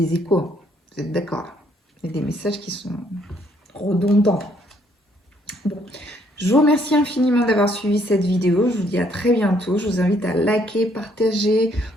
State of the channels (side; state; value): both; normal; correlation 0.68